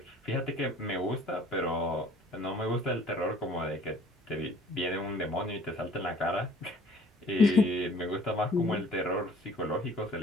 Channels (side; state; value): both; normal; correlation 0.53